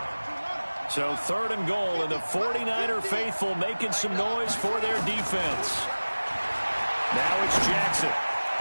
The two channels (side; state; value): both; inverted; correlation -1.00